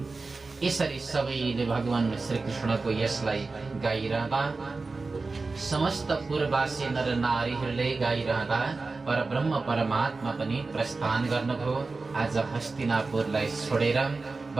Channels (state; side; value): quieter; left; 3.8 dB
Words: यसरी सबैले भगवान श्री कृष्णको यशलाई गाइरहँदा, समस्त पूर्ववासी नर नारीहरूले गाइरहँदा परब्रह्म परमात्मा पनि प्रस्थान गर्नुभयो। आज हस्तिनापुरलाई छोडेर